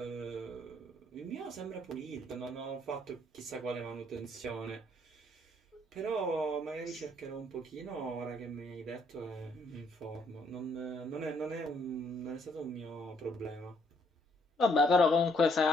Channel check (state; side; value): normal; both; correlation 0.68